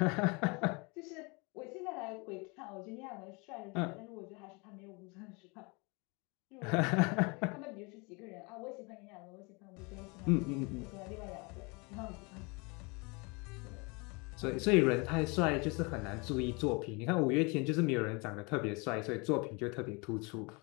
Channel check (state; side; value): quieter; right; 29.5 dB